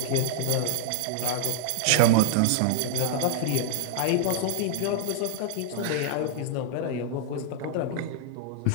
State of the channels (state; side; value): different; both; correlation 0.00